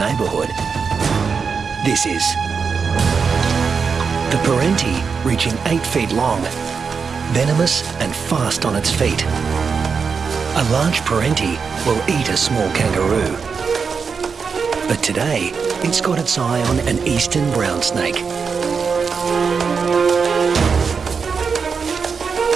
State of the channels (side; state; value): left; quieter; 5.6 dB